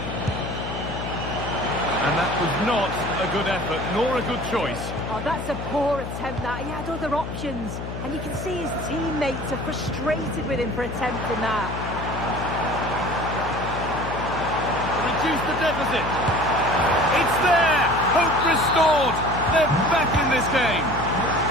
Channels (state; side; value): noise; left; hum, 7 dB below the sound